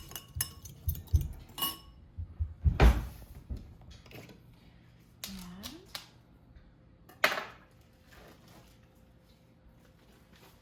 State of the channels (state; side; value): identical; both; correlation 1.00